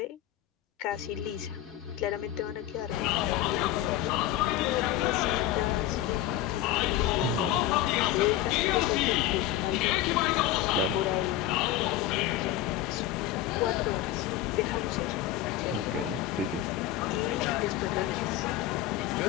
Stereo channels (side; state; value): right; quieter; 12.9 dB